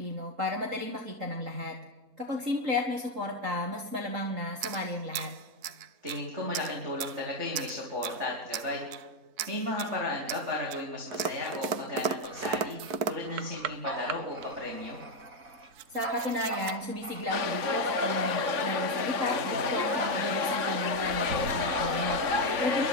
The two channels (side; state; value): left; late; 4.5 ms